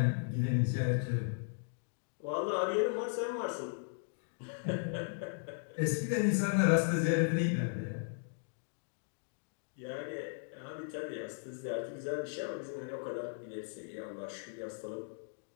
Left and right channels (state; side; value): silent; right; digital silence